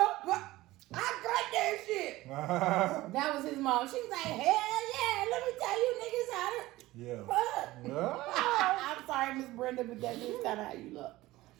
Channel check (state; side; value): quieter; left; 17.9 dB